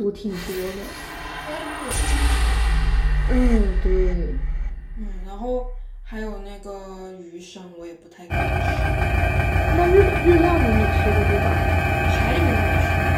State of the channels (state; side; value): identical; both; correlation 1.00